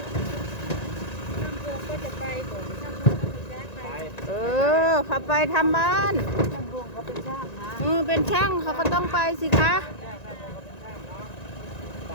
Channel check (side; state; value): right; late; 1.9 ms